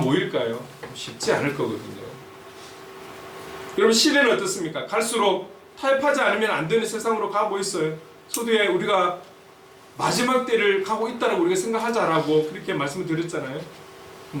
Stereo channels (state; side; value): identical; both; correlation 1.00